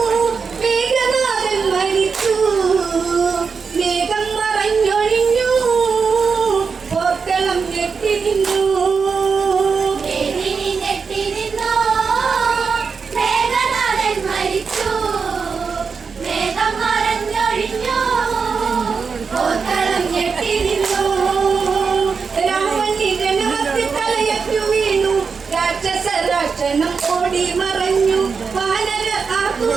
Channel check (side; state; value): left; quieter; 5.4 dB